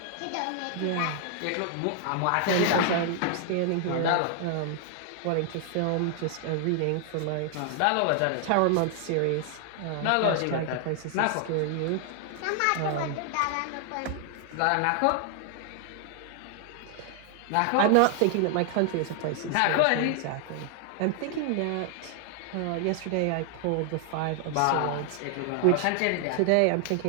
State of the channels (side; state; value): both; different; correlation 0.00